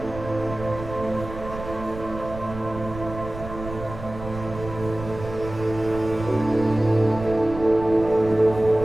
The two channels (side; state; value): right; noise; rumble, 11 dB below the sound